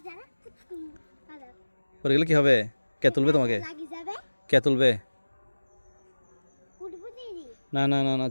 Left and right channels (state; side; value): inverted; both; correlation -1.00